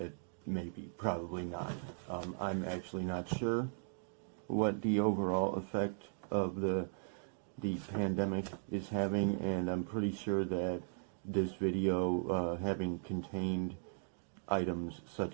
maybe, probably not. I'm actually not sure what the overall effect of the pandemic is having, and I'm pretty sure that this video, having contained items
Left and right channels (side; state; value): left; silent; digital silence